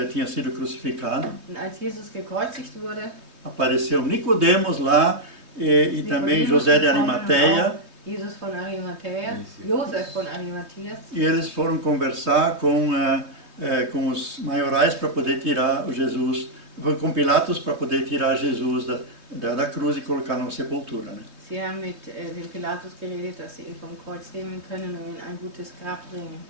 tinha sido crucificado, Und als Jesus gekreuzigt wurde, apareceu Nicodemos lá e também José de Arimateia, Jesus von Arimathea, Josef von Arimatheas, e eles foram conversar com os maiorais para poder tirar o Jesus, com Pilatos para poder tirar Jesus da cruz e colocar numa sepultura, né? sie haben mit dem Pilatus geredet, dass sie ihn vom Kreuz nehmen können und in ein gutes Grab bringen.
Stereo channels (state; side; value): late; left; 3.2 ms